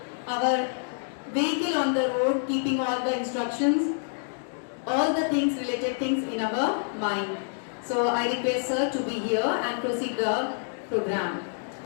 our vehicle on the road, keeping all the instructions, all the things, related things in our mind. So I request sir to be here and proceed the program.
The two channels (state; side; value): silent; right; digital silence